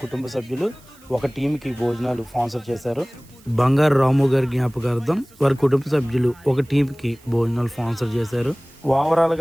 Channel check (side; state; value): right; noise; hiss, 27 dB below the sound